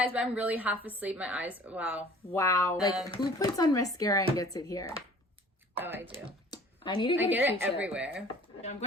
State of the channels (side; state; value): both; normal; correlation 0.50